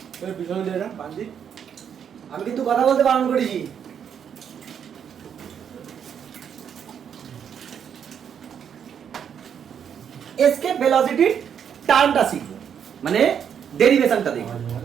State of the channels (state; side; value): quieter; left; 8.1 dB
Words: পিছনে দিয়ে না বান্দি, আমি কিন্তু কথা বলতে বারণ করেছি। এসকেপ ভেলোসিটি টার্মটা শিখবো, মানে ডেরিভেশনটা দেখবো।